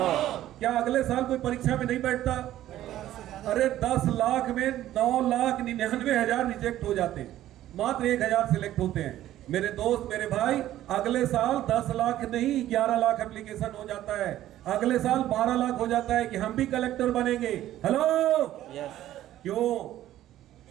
क्या अगले साल कोई परीक्षा में नहीं बैठता? अरे 10 लाख में 9,99,000 रिजेक्ट हो जाते हैं, मात्र 1000 सिलेक्ट होते हैं। मेरे दोस्त, मेरे भाई, अगले साल 10 लाख नहीं 11 लाख एप्लीकेशन हो जाता है, अगले साल 12 लाख हो जाता है कि हम भी कलेक्टर बनेंगे। हेलो, क्यों?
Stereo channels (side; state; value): left; quieter; 13.4 dB